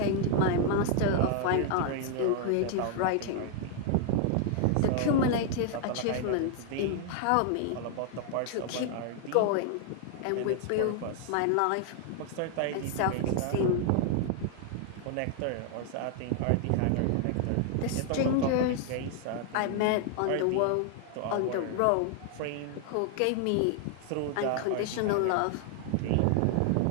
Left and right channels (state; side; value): different; both; correlation 0.00